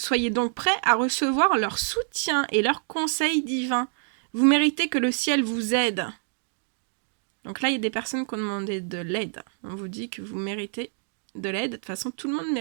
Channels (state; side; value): silent; left; digital silence